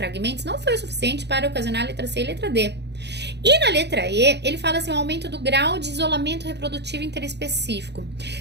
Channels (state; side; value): late; left; 0.50 ms